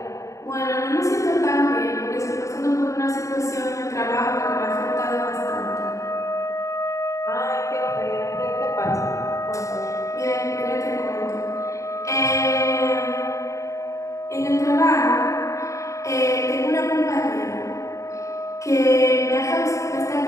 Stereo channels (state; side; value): late; right; 0.15 ms